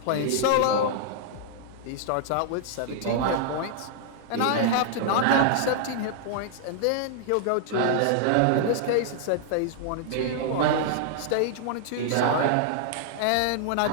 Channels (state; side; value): different; both; correlation -0.01